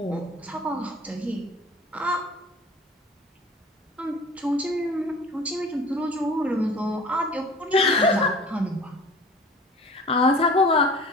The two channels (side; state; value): both; normal; correlation 0.44